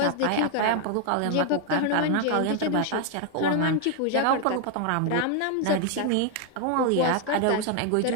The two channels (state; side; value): different; both; correlation 0.00